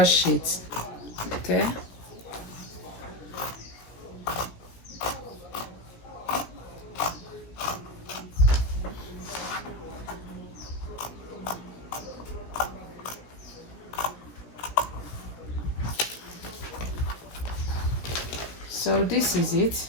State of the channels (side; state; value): right; late; 17 ms